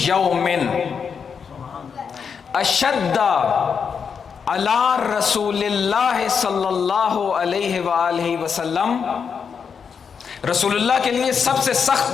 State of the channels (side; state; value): right; quieter; 6.4 dB